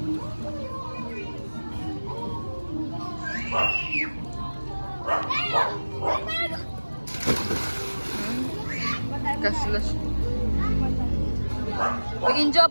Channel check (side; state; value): both; inverted; correlation -1.00